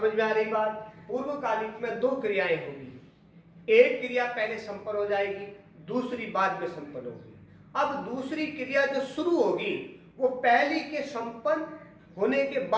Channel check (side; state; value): both; identical; correlation 1.00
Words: में आ रही बात? पूर्वकालिक में दो क्रियाएं होगी, एक क्रिया पहले संपन्न हो जाएगी, दूसरी बाद में संपन्न होगी। अब दूसरी क्रिया जो शुरू होगी वो पहली के संपन्न होने के